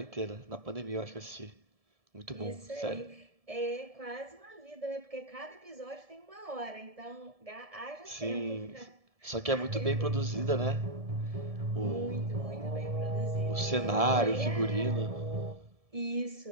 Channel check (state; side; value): late; left; 1.7 ms